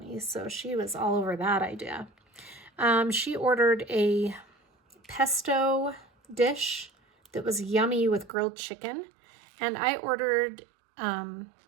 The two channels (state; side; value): drops out; left; at 8.3 s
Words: so she was all over that idea. She ordered a pesto dish that was yummy with grilled chicken. And I ordered pad